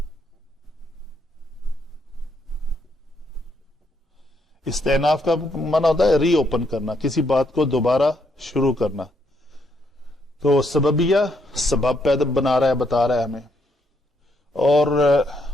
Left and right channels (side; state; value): both; normal; correlation 0.75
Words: استئناف کا معنی ہوتا ہے ری اوپن کرنا, کسی بات کو دوبارہ شروع کرنا. تو سببیہ سبب پیدا بتا رہا ہے ہمیں. اور